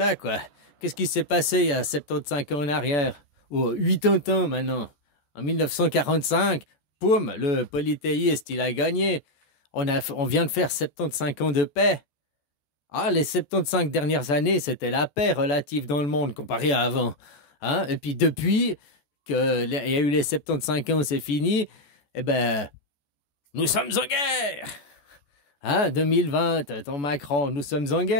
quoi. Qu'est-ce qui s'est passé il y a 75 ans en arrière? Ou 80 ans maintenant. En 1945, poum, le polythéiste, il a gagné. On vient de faire 75 ans de paix. Ah, les 75 dernières années, c'était la paix relative dans le monde comparé à avant. Hein? Et puis depuis qu'il y a eu les 75 ans, c'est fini, eh ben, nous sommes en guerre. Hein? 2020, ton Macron, nous sommes en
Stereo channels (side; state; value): right; late; 14 ms